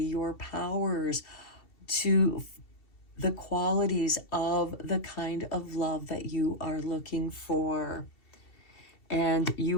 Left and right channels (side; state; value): right; late; 2.7 ms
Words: your powers, to the qualities of the kind of love that you are looking for. And